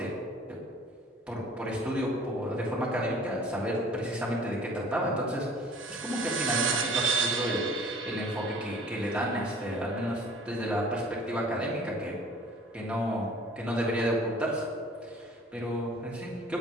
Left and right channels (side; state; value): both; normal; correlation 0.49